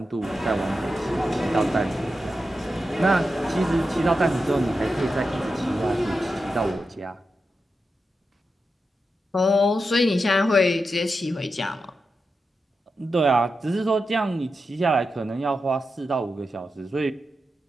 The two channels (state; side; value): normal; both; correlation 0.89